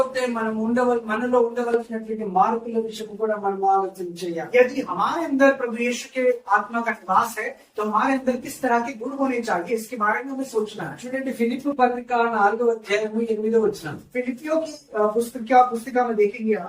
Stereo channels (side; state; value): both; identical; correlation 1.00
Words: మనం మనలో ఉండవలసినటువంటి మార్పుల విషయం కూడా మనం ఆలోచన చేయాలి. यदि हमारे अंदर प्रभु यीशु के आत्मा का निवास है तो हमारे अंदर किस तरह के गुण होने चाहिए इसके बारे में हमें सोचना है। చూడండి, ఫిలిప్పు పత్రిక 4వ అధ్యాయము 8వ వచనం. फिलिप्पियों की पुस्तिका में देखेंगे